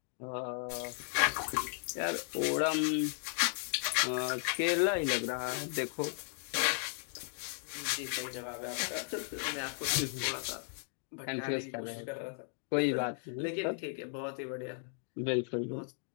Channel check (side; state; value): right; silent; 54 dB below the other